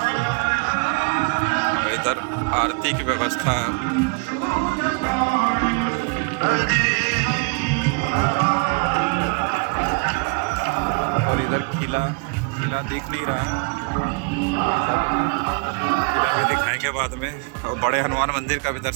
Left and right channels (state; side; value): quieter; left; 34.5 dB